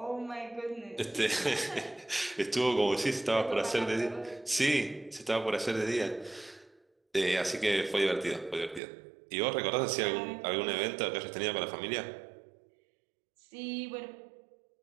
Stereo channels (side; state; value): left; drops out; at 8.8 s